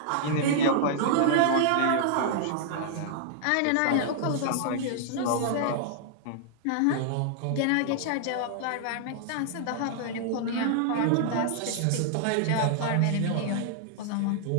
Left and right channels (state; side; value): different; both; correlation -0.01